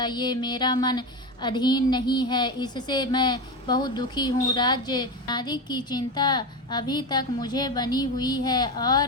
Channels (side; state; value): both; normal; correlation 0.19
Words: मेरा मन अधीन नहीं है, इससे मैं बहुत दुखी हूँ। राज्य आदि की चिंता अभी तक मुझे बनी हुई है